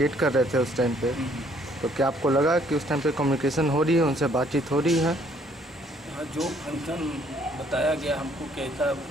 कर रहे थे उस टाइम पे? तो क्या आपको लगा कि उस टाइम पे कम्युनिकेशन हो रही है, उनसे बातचीत हो रही है? हाँ, जो फंक्शन बताया गया हमको कि ऐसा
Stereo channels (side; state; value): both; normal; correlation 0.64